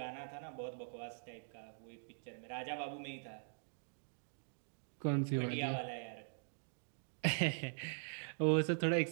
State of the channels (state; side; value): silent; left; digital silence